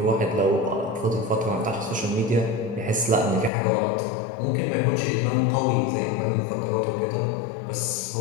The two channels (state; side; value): drops out; right; at 3.5 s